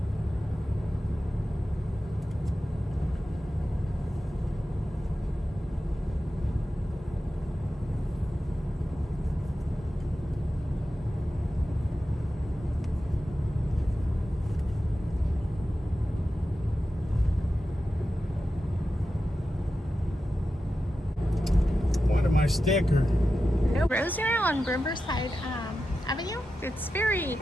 My sticker. No, Rosemary on Riverside Avenue. It's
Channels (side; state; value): both; normal; correlation 0.92